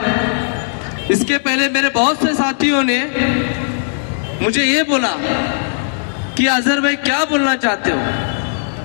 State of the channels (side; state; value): right; silent; digital silence